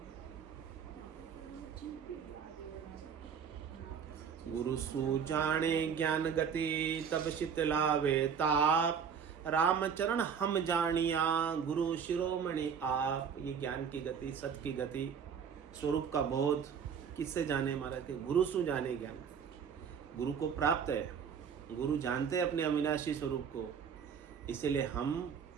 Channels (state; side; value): quieter; left; 7.1 dB